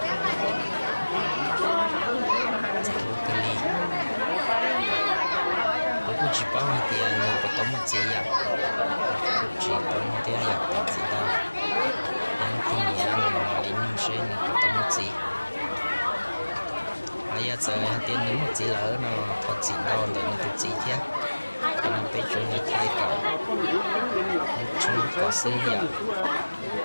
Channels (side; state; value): both; inverted; correlation -1.00